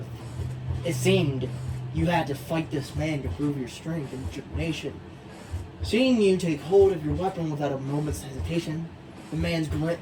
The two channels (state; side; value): identical; both; correlation 1.00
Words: It seemed you had to fight this man to prove your strength and determination. Seeing you take hold of your weapon without a moment's hesitation, the